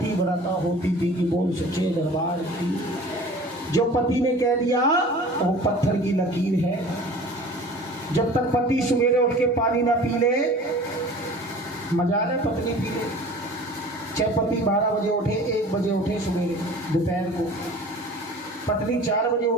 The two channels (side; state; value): both; normal; correlation 0.43